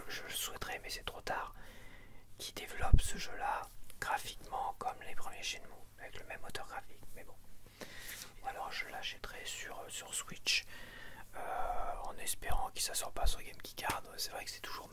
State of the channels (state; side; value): identical; both; correlation 1.00